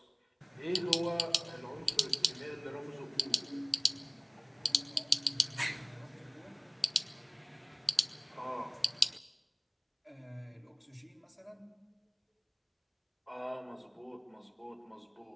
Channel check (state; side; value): identical; both; correlation 1.00